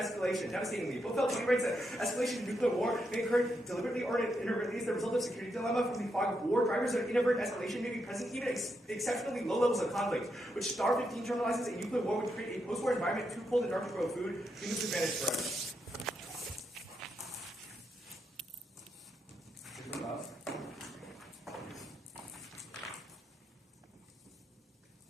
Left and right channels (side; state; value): both; normal; correlation 0.82